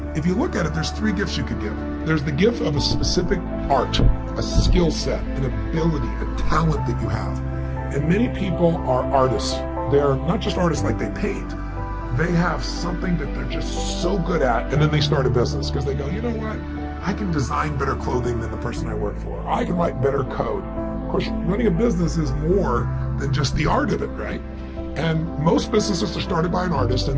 If you look at it, there's 3 gifts you could give. There's the gift of a specific art, a skill set, an ability, a talent that you have. And many people are artists. They're not just artists like they paint. They have something that they're just so good at, and then they start a business because they go, you know what? I can design better clothing than the person I work for. I can write better code. Of course, running a business is more than just the art of it, right? And most businesses are started by an artist, and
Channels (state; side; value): identical; both; correlation 1.00